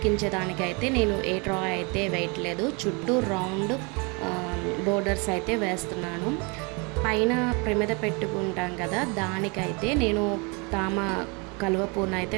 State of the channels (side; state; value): left; quieter; 30.9 dB